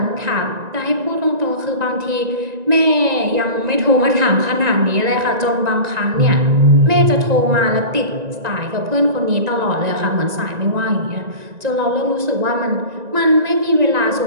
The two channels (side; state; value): left; late; 1.9 ms